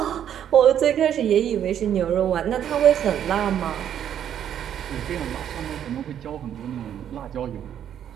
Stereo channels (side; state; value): left; quieter; 9.8 dB